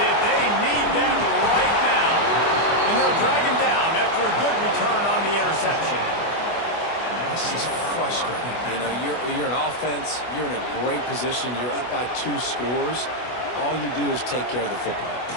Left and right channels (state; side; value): late; right; 24 ms